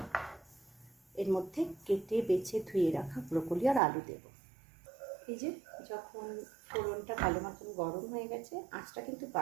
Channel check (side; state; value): left; drops out; at 3.8 s